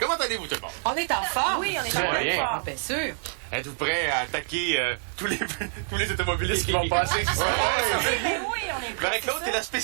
allez-vous, tout le monde? On est en forme. Oui, on est en forme. Bien sûr. Êtes-vous prêts à attaquer tous les automobilistes qui vont passer? Oui, on est prêts. Marie-Claude, t'es la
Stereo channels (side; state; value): left; silent; digital silence